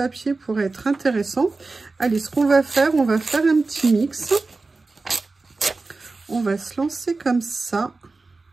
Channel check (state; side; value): quieter; left; 3.7 dB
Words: pourrait être intéressant. Allez, ce qu'on va faire, on va faire un petit mix. On va se lancer comme ça.